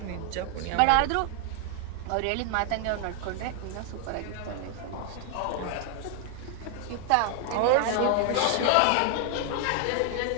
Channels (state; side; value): different; both; correlation 0.00